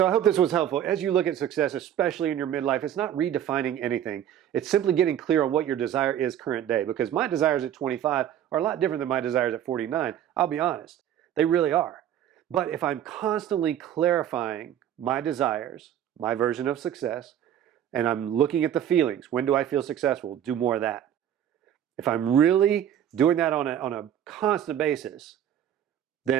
I hope this was helpful. As you look at success, especially in your midlife, it's not redefining anything. It's simply getting clear on what your desire is current day. Because my desires at 25 are a lot different than my desires at 49. I'll be honest. They really are. But if I'm constantly clarifying my desires, my version of success, and I'm looking at the feelings, when do I feel successful? Do more of that. If I'm really doing that on a constant basis,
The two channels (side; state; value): left; quieter; 10.4 dB